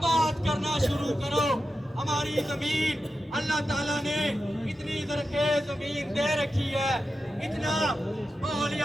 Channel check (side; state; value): both; normal; correlation 0.91